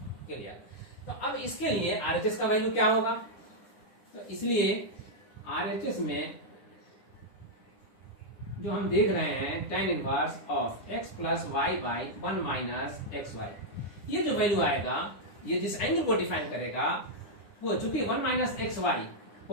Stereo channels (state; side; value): late; right; 9.9 ms